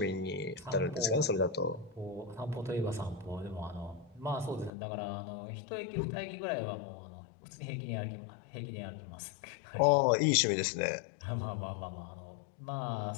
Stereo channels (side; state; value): right; drops out; at 4.7 s